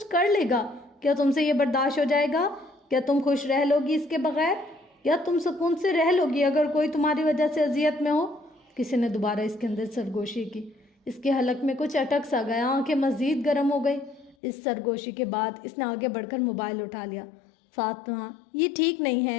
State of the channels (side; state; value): right; drops out; at 14.4 s